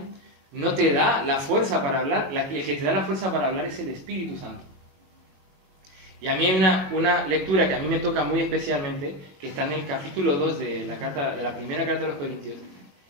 no te da la fuerza para hablar. El que te da la fuerza para hablar es el Espíritu Santo. Y a mí hay una lectura que a mí me toca muy especialmente, que está en el capítulo 2 de la primera carta a los Corintios,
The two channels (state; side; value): late; left; 21 ms